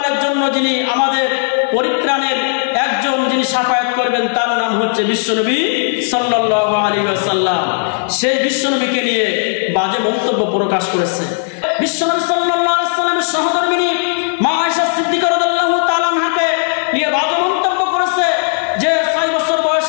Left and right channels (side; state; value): right; silent; digital silence